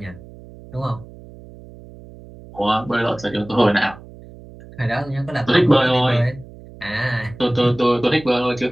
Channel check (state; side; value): noise; right; hum, 19 dB below the sound